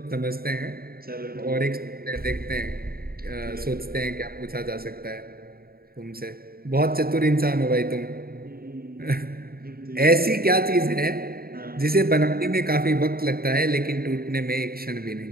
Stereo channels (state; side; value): late; left; 0.44 ms